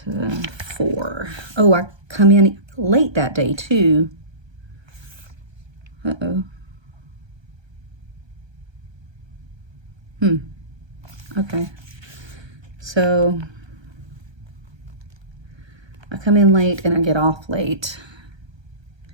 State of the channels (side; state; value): left; late; 1.3 ms